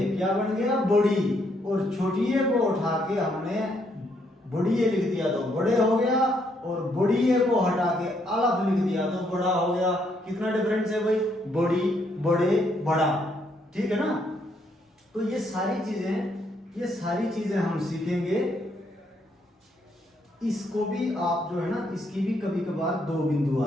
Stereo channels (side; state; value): both; normal; correlation 0.73